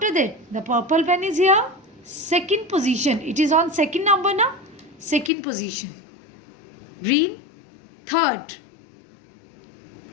that, the purple pen is here. Second position. It is on second number now. Second position. Green, third.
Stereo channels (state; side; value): drops out; right; at 5.3 s